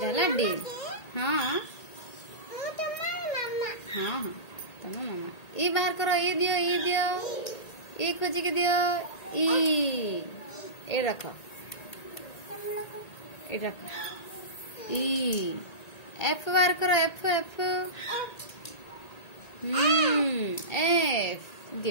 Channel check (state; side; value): late; right; 1.8 ms